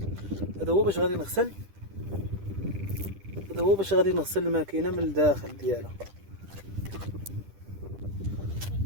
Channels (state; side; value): late; left; 10 ms